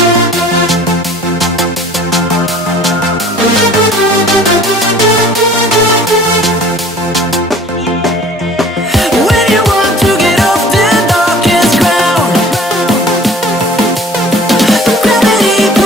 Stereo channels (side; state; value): both; normal; correlation 0.49